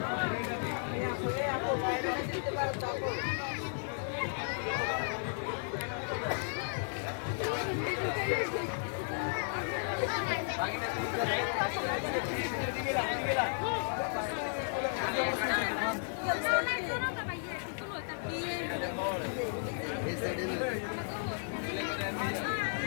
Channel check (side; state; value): right; silent; digital silence